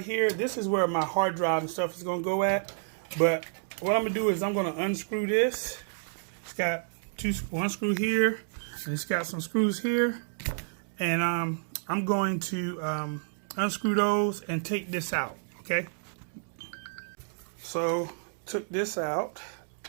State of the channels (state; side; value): silent; left; digital silence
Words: here, this is where my hard drive and stuff is going to go at. But what I'm going to do is I'm going to unscrew this. It's got one screw here, and it's got some screws here, and I'm going to unscrew those and take this out. Okay, so took this out.